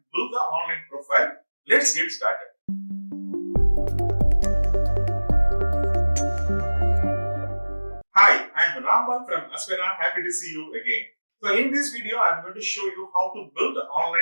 build the online profile. Let's get started. Hi, I'm Rambal from Aspira. Happy to see you again. So in this video, I'm going to show you how to build an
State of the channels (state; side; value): inverted; both; correlation -1.00